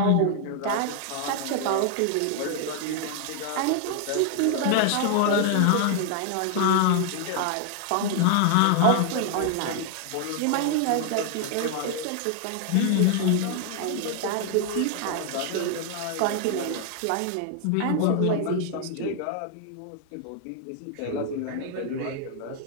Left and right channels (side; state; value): both; different; correlation 0.00